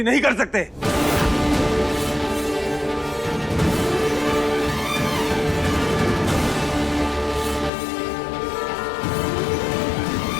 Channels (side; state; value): right; drops out; at 7.7 s